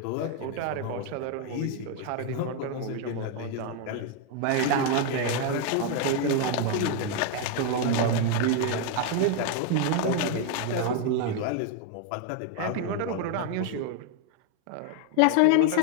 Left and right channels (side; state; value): both; different; correlation 0.01